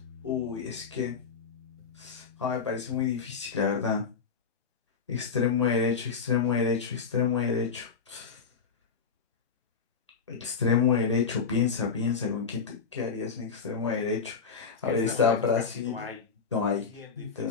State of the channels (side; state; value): right; quieter; 5.6 dB